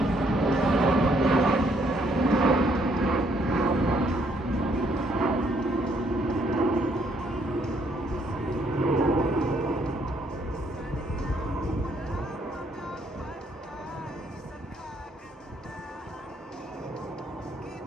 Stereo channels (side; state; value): both; normal; correlation 0.69